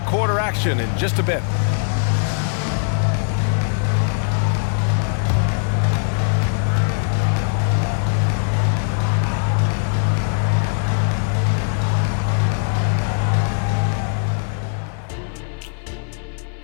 quarter action in just a bit.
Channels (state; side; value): silent; right; 59 dB below the other